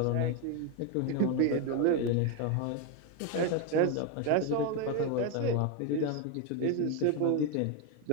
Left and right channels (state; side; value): different; both; correlation 0.01